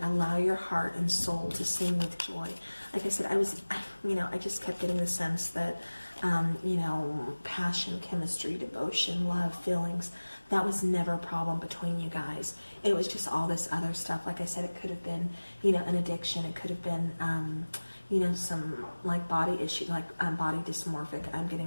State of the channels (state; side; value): inverted; both; correlation -1.00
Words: Allow your heart and soul to sing with joy. Like I said, I just kept getting the sense that, passion, chemistry, devotion, love, feelings, that was never a problem between you guys. It was just all this other stuff. Like I said, it could have been, an addiction. It could have been, some like body issue, like body dysmorphic I'm